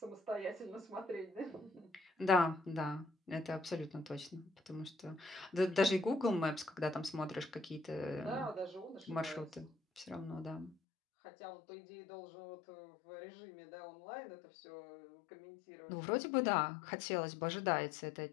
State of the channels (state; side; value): drops out; right; at 10.8 s